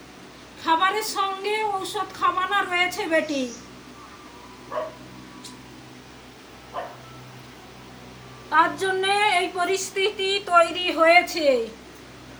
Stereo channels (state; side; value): identical; both; correlation 1.00